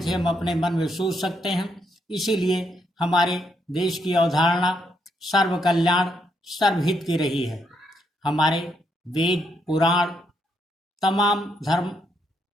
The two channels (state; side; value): normal; both; correlation 0.76